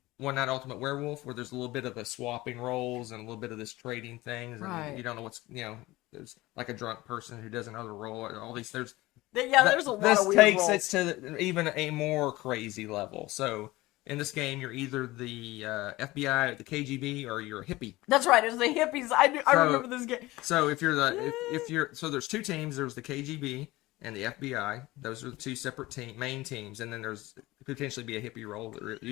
Night Ultimate Werewolf, where there's a little bit of the swapping roles and a little bit of this trading things, and you don't know there's like a drunk person who does another role, and all these there's a lot of weird roles. This takes it to even a more crazy level. So in this game, you're either the FBI, the KGB, or you're a hippie. That's right. It's the hippies. I remember this game. So if you're so there's 2 teams. There's the KGB and the FBI. Those are the 2 separate main teams, and then there's potentially be a hippie role,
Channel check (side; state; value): right; quieter; 19.3 dB